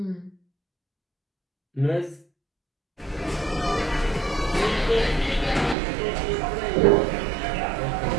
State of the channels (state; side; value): drops out; left; at 5.8 s